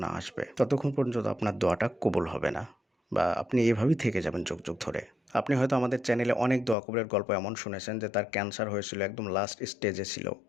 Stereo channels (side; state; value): right; drops out; at 6.8 s